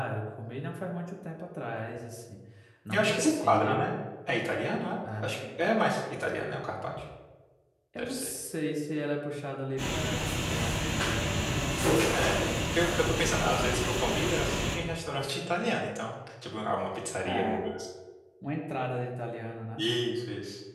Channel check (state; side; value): identical; both; correlation 1.00